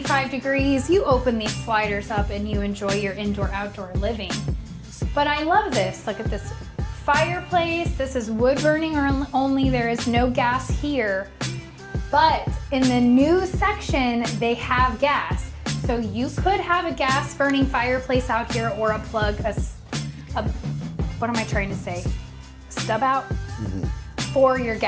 degrees, you open these sliders up and you enjoy your indoor-outdoor living. But I love this. Look at this fireplace. This is wood burning only. There is no gas here. But in the new section, they have gas. So you could have a gas burning fireplace out here or a plug, what am I trying to say? Stub out for your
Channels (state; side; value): identical; both; correlation 1.00